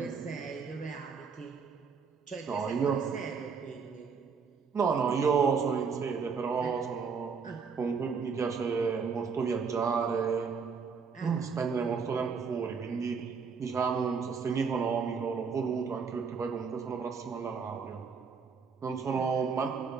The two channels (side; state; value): left; quieter; 5.6 dB